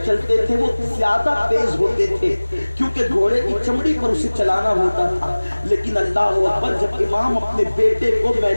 چلتے تھے وہ زیادہ تیز ہوتے تھے، کیونکہ گھوڑے کی چمڑی پر اسے چلانا ہوتا تھا۔ لیکن اللہ اکبر، جب امام اپنے بیٹے کو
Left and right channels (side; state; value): both; inverted; correlation -1.00